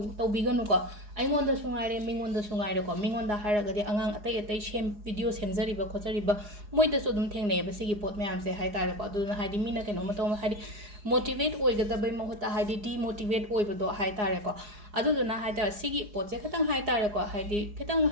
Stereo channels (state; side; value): late; left; 4.8 ms